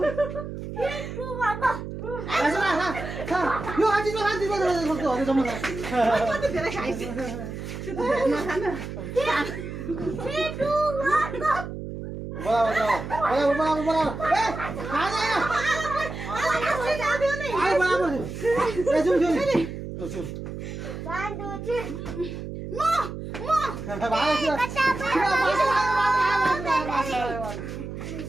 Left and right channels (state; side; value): noise; right; hum, 8 dB below the sound